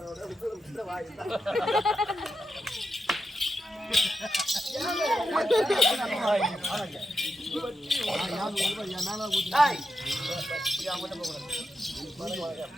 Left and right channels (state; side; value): normal; both; correlation 0.88